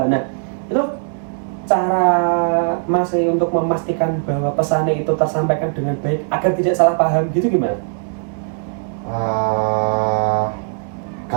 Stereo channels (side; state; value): left; silent; 66 dB below the other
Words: Nah, itu cara Mas untuk memastikan bahwa pesannya itu tersampaikan dengan baik agar tidak salah paham gitu gimana?